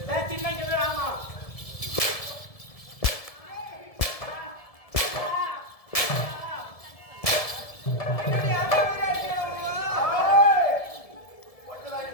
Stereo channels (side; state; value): right; late; 1.7 ms